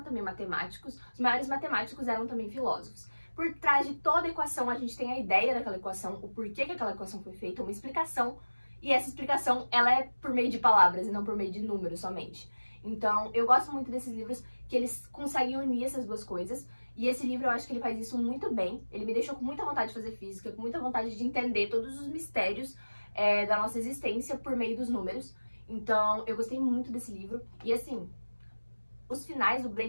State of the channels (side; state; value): both; inverted; correlation -1.00